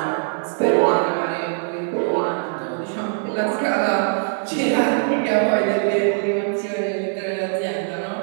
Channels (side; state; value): left; silent; 56 dB below the other